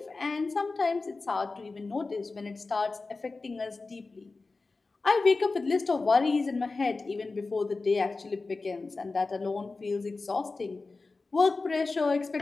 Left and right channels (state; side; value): quieter; right; 3.7 dB